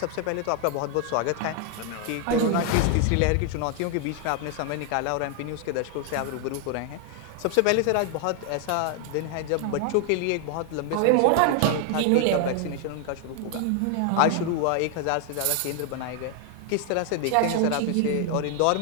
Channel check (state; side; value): different; both; correlation 0.00